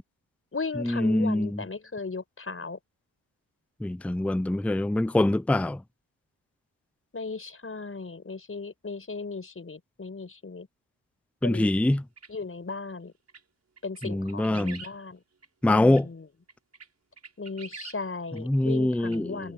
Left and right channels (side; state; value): both; normal; correlation 0.87